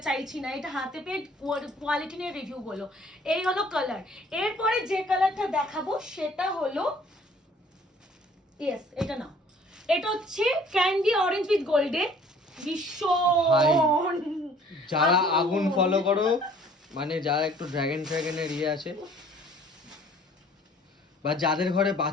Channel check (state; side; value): normal; both; correlation 0.55